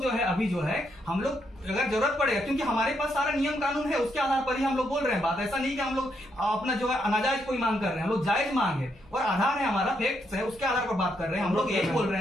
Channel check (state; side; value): noise; left; hum, 27 dB below the sound